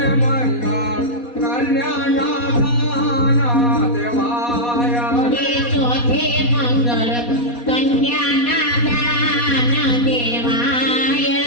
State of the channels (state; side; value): late; right; 4.2 ms